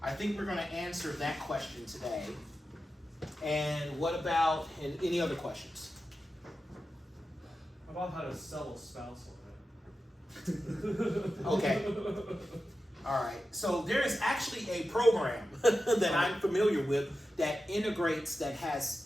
I think we're going to answer that question today. And what about any other questions? How about how to sell a spousal? Okay. All right. So there is actually a program that I'm familiar with that integrates, that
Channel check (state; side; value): normal; both; correlation 0.92